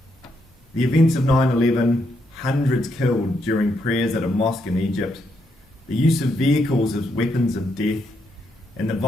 The events of 9/11, hundreds killed during prayers at a mosque in Egypt, the use of vehicles as weapons of death, and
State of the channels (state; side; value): normal; both; correlation 0.78